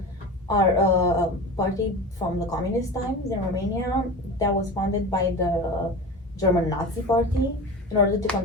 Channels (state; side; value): normal; both; correlation 0.31